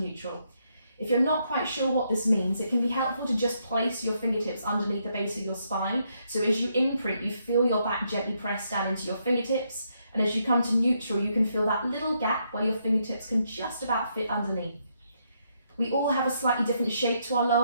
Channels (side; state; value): both; inverted; correlation -0.76